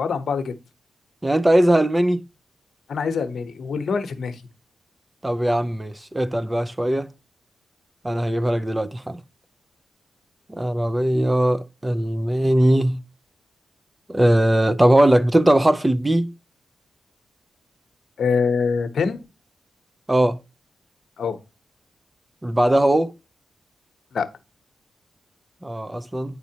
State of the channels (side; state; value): both; normal; correlation 0.96